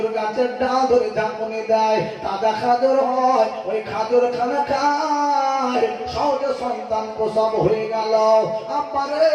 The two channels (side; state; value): both; identical; correlation 1.00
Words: গাছের ডাল ধরে ঝাঁকুনি দেয়, তাজা খাজুর হয়, ওই খাজুর খানা খায়, সহজে সন্তান প্রসব হয়ে গেল। আব্বারে